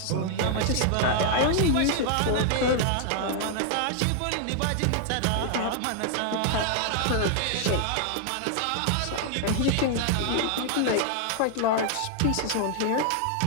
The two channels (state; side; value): different; both; correlation 0.00